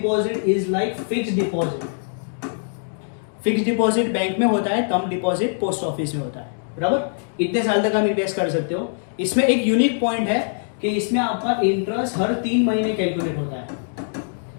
is like fixed deposit. Fixed deposit bank में होता है, टर्म डिपॉजिट पोस्ट ऑफिस में होता है, बराबर. इतने साल तक आप इन्वेस्ट कर सकते हो. इसमें एक यूनिक पॉइंट है कि इसमें आपका इंटरेस्ट हर 3 महीने कैलकुलेट होता है.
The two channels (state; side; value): silent; right; digital silence